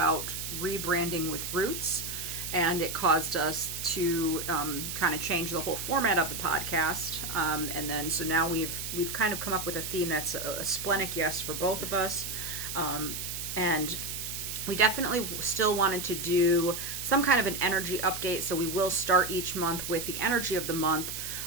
rebranding with roots, and it caused us to kind of change the whole format of the podcast. So now we've kind of come up with a theme that's a splenic yes for both of us. And we definitely still wanted to do some kind of an energy update, so we will start each month with the energy of the month,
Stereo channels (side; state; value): right; noise; hiss, 5 dB below the sound